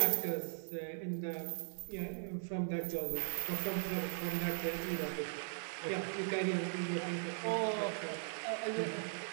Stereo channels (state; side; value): silent; left; 52 dB below the other